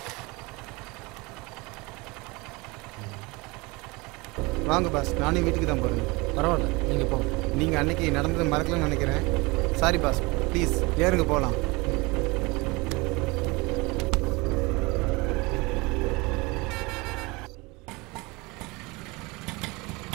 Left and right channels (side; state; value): left; quieter; 25.1 dB